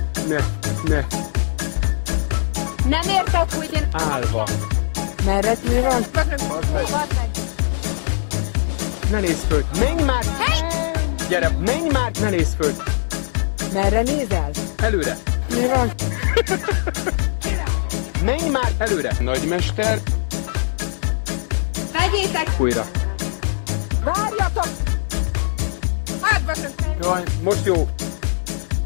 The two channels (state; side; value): silent; right; 65 dB below the other